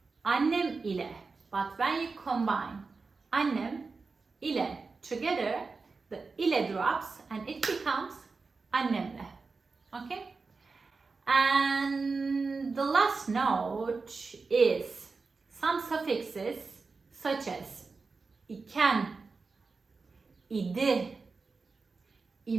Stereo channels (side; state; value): left; quieter; 4.3 dB